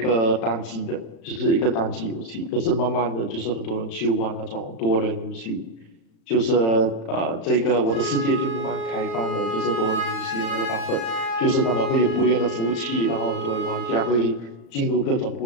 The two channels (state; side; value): late; right; 35 ms